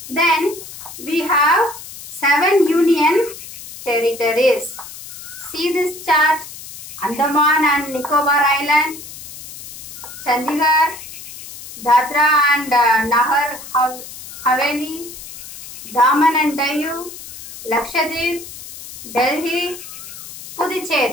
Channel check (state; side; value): noise; left; hiss, 14 dB below the sound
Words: Then we have 7 union territories. See this chart. Andaman and Nicobar Islands, Chandigarh, Dadra and Nagar Haveli, Daman and Diu, Lakshadweep, Delhi,